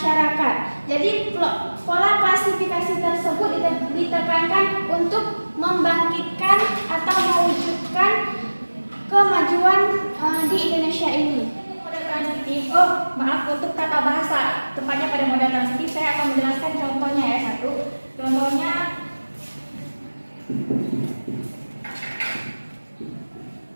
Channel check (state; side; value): inverted; both; correlation -1.00